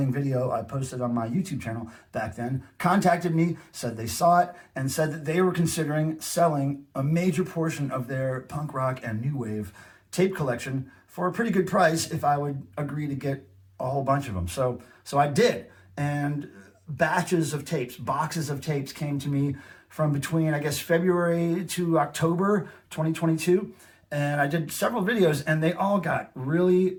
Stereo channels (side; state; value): both; identical; correlation 1.00